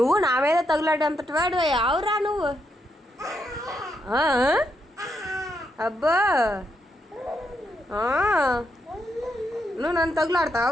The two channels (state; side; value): normal; both; correlation 0.80